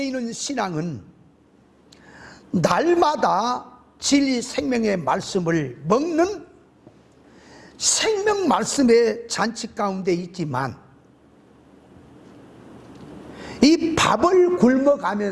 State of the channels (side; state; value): both; identical; correlation 1.00